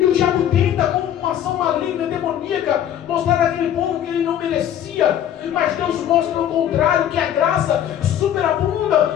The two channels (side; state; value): right; quieter; 10.5 dB